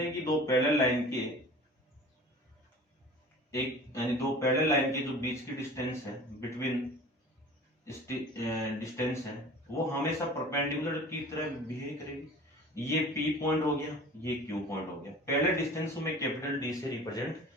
हैं कि दो पैरेलल लाइन के जो बीच की डिस्टेंस है, बिटवीन डिस्टेंस है, वो हमेशा परपेंडिकुलर की तरह बिहेव करेगी। ये P पॉइंट हो गया, ये Q पॉइंट हो गया। पहले डिस्टेंस को मैं कैपिटल D से रिप्रेजेंट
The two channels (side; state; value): both; normal; correlation 0.42